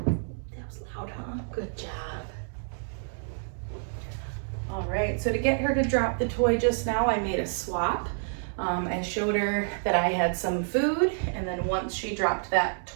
loud, huh? Good job. All right, so to get her to drop the toy just now, I made a swap. I showed her that I had some food, and then once she dropped that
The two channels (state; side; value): silent; left; digital silence